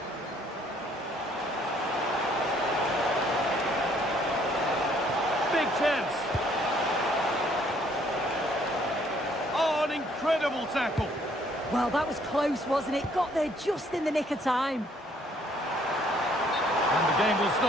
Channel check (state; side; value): normal; both; correlation 0.64